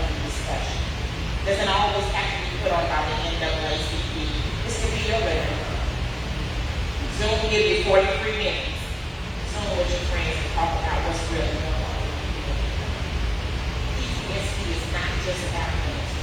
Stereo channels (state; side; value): identical; both; correlation 1.00